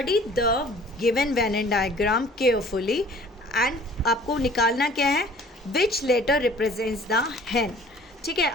the given Venn diagram carefully and आपको निकालना क्या है, which letter represents the hen। ठीक है,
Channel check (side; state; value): both; normal; correlation 0.51